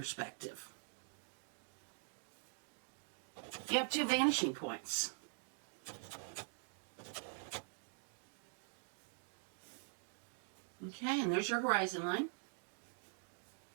you have 2 vanishing points. Okay, and there's your horizon line.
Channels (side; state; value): left; silent; digital silence